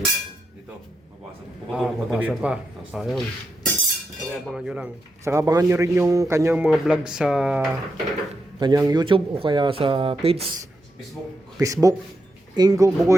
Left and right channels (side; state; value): both; normal; correlation 0.85